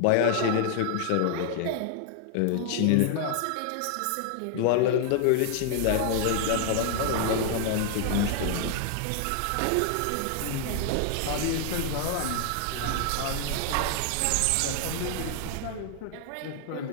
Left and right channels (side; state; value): both; different; correlation 0.00